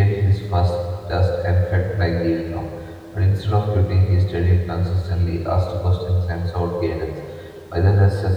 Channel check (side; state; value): both; identical; correlation 1.00